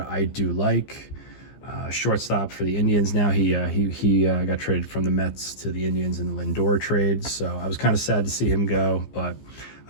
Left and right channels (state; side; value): late; right; 15 ms